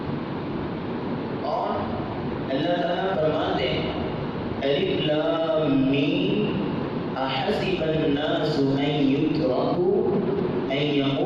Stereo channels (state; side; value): identical; both; correlation 1.00